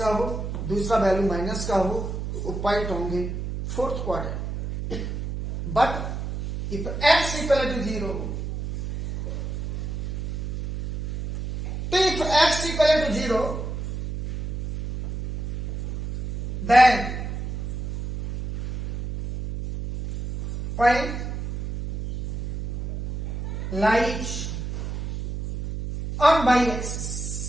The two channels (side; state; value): right; noise; hum, 5 dB below the sound